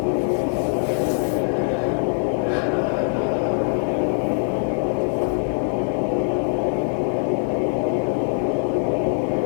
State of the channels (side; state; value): right; silent; 58 dB below the other